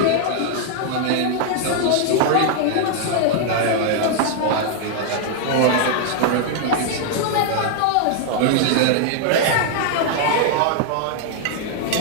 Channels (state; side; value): different; both; correlation 0.00